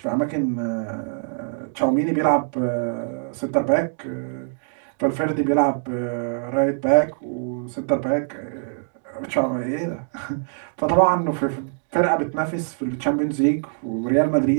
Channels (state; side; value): silent; left; digital silence